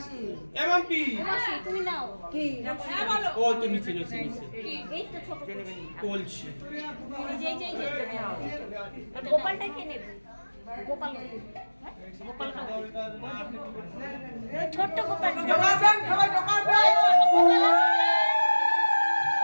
এমপি মাসি তুমি নাও কি হ্যাঁ বলো ও তো নিচে কি এই তো ছোট কলসি এই যে গোপালটা কে নেবে গোপাল ছোট গোপাল সবাই দোকান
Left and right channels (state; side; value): inverted; both; correlation -1.00